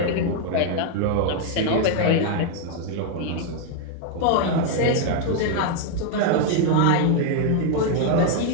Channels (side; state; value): both; different; correlation 0.00